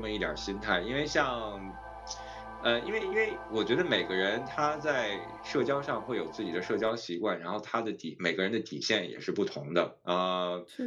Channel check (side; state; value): both; identical; correlation 1.00